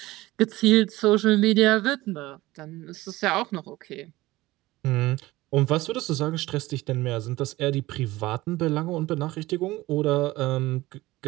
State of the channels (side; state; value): left; quieter; 18.5 dB